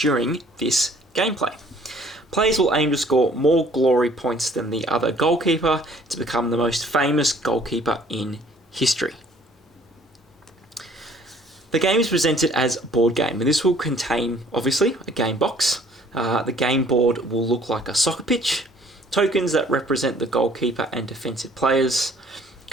this gameplay. Players will aim to score more glory points than the other goalkeeper to become the most famous goalkeeper in history. The game is presented as a board game, and this will contain, obviously, a game box. The game board will look like a soccer pitch, tokens that represent the goalkeeper and defensive players,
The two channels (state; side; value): normal; both; correlation 0.57